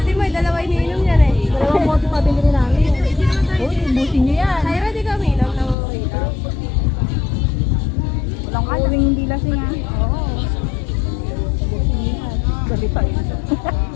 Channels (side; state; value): right; drops out; at 5.8 s